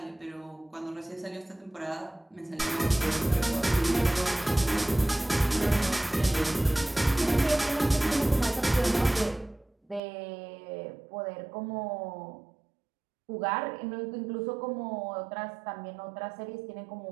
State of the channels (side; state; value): left; drops out; at 10.0 s